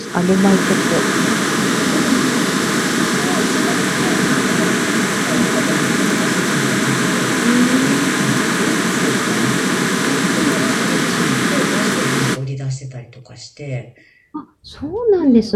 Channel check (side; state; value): both; identical; correlation 1.00